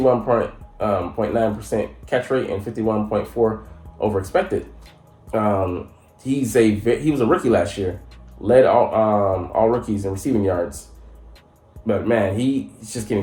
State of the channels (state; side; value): identical; both; correlation 1.00